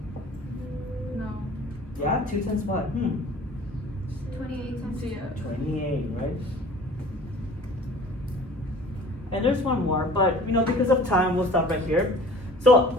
No. Yeah, 2 times what? 28 times Yeah. 28, right? And there's one more, but because of time, we'll stop right here. So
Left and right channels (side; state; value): both; normal; correlation 0.46